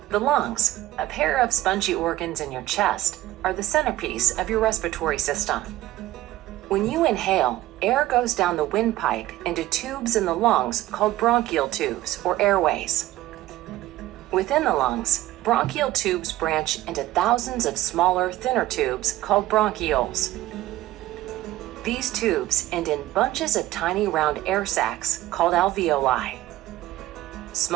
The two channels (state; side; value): quieter; left; 15.9 dB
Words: The lungs, a pair of spongy organs in your chest, are the centerpiece of your respiratory system. When you inhale, air goes down the windpipe into tubes in the lungs called bronchial tubes or airways. Within the lungs, bronchial tubes branch into thousands of smaller, thinner tubes called bronchioles. These tubes end in bunches of tiny round air sacs called alveoli.